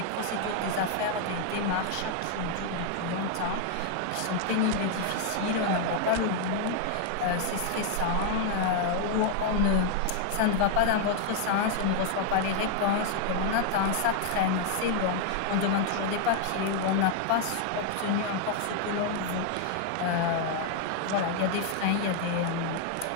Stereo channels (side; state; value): both; different; correlation 0.00